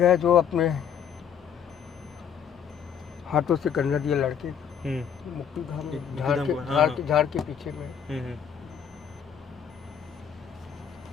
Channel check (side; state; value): right; quieter; 8.0 dB